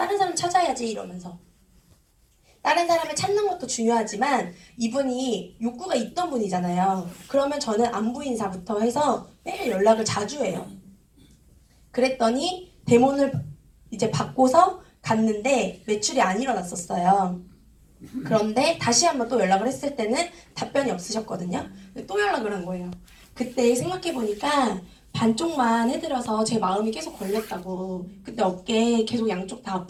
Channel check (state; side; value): identical; both; correlation 1.00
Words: 사람 찾아야지 이러면서. 다른 사람을 찾는 것도 중요하지만 이분이 욕구가 있던 분이잖아요. 그러면 저는 안부 인사부터 해서 매일 연락을 자주 해요. 그랬더니 데몬을 이제 받고서 갔는데 매출이 안 일어났었어요. 그런데 다시 한번 또 연락을 했을 때는 답변이 없으셨거든요. 또 연락을 한 거예요. 그때 생각해보니까 반쪽만 해드려서 제 마음이 계속 걸렸다고. 그때 어깨 계속 양쪽 다